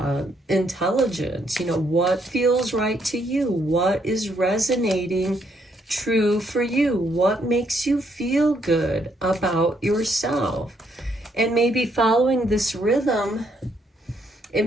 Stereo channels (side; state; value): both; normal; correlation 0.72